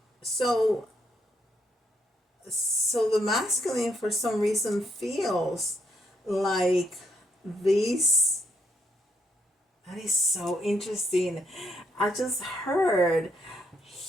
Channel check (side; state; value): both; normal; correlation 0.75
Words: So the masculine for some reason feels like these That is so interesting. I just heard